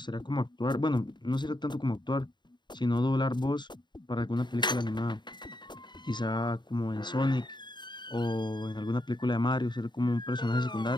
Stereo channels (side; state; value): right; late; 0.22 ms